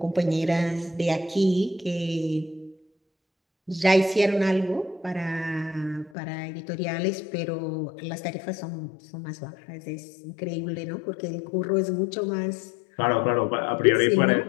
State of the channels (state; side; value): drops out; right; at 6.1 s